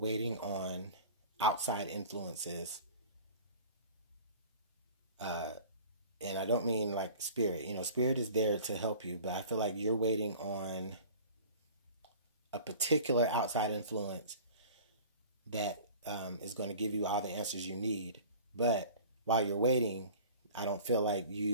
on outside influences. And I don't mean like spirit. You know, spirit is there to help you, but I feel like you're waiting on a particular outside influence that is going to give you all the answers you need. But while you're waiting, I don't feel like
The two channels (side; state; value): both; inverted; correlation -0.43